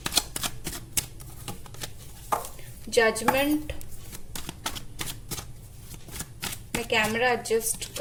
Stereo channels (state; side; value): identical; both; correlation 1.00